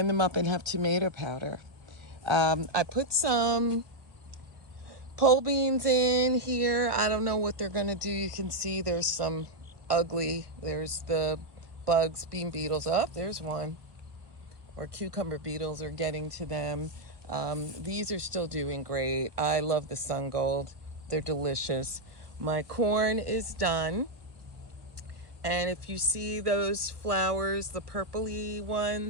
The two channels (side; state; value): left; late; 1.3 ms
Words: them up and have tomato powder. I put some pole beans in here. I don't know what they're gonna do. You can see there's some ugly, there's the bugs, bean beetles. Up, there's one. Or cucumber beetles are getting to them. These are still doing great. I love the sun gold. They're delicious. My corn is done. And if you see those flowers, the purpley